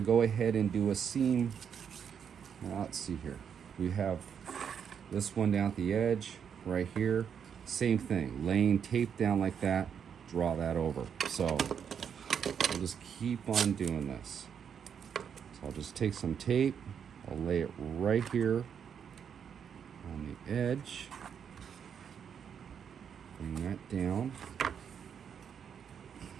ahead and do a seam. Well, let's see here. We have this one down at the edge, right here. Same thing, laying tape down like that, draw that over. So I'll just keep on doing this. So I'll just take some tape, I'll lay it right here on the edge. Bring that down.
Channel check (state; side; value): quieter; left; 7.6 dB